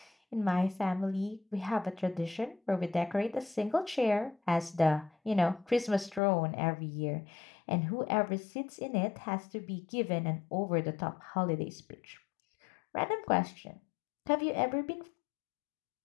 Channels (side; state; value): right; drops out; at 6.2 s